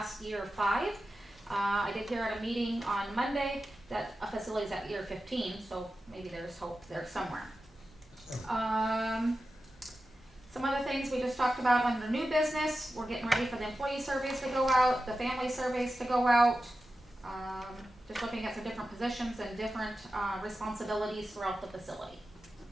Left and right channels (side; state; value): both; normal; correlation 0.92